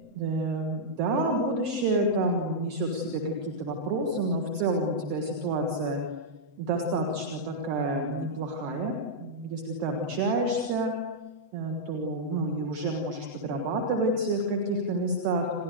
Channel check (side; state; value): left; late; 7.9 ms